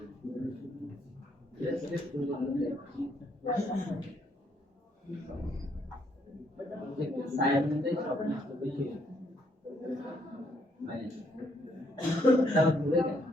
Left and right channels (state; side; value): normal; both; correlation 0.71